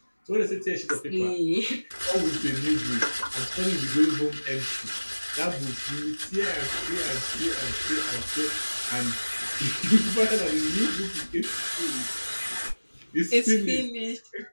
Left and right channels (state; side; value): inverted; both; correlation -1.00